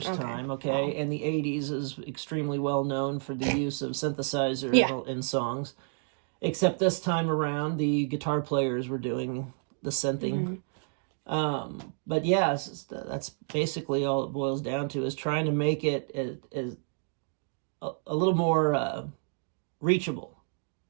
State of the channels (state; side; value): silent; left; 58 dB below the other